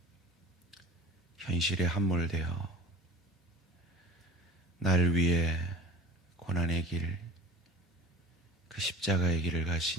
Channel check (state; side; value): normal; both; correlation 0.42